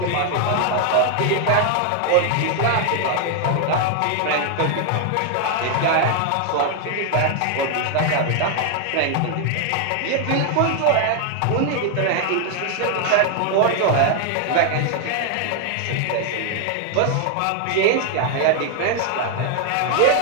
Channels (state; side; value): different; both; correlation 0.00